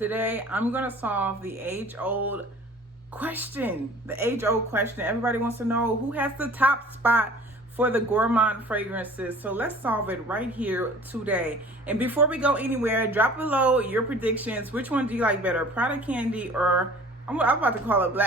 I'm going to solve the age-old question. The age-old question. Everybody wants to know who has the top spot for the gourmand fragrances. So let's solve it right here today. And before we go anywhere, drop below your predictions. Which one do you like better, Prada Candy or I'm about to call it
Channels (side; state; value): both; normal; correlation 0.47